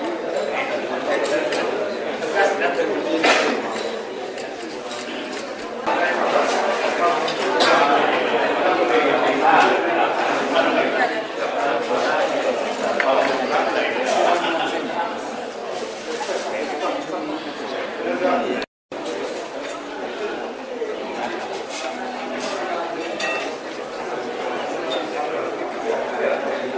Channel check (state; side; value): identical; both; correlation 1.00